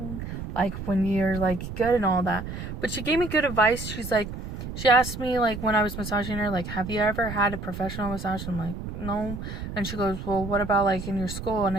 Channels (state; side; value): noise; right; rumble, 7 dB below the sound